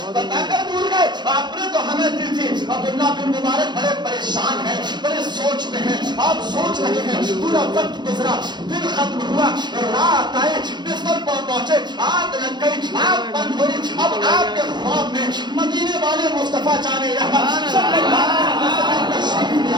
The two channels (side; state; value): left; late; 0.21 ms